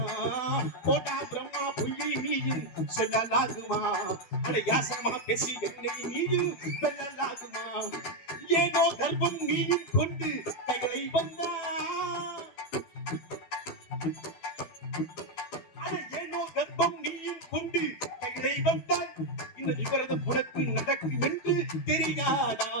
போடா பிரம்மா, புள்ளி நீயும் சொல்லலாகுமா? அட யாசகமா பேசி என்னை நீயும் வெல்லலாகுமா? ஏதோ கர்ப்பம் நீயும் கொண்டு கைகளை வந்தா, ஏனோ கர்ப்பம் நீயும் கொண்டு கைகளை வந்தால் இந்த விவரதம் உனக்கு நடக்கும் என்று தெரியாதா?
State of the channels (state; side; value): late; right; 12 ms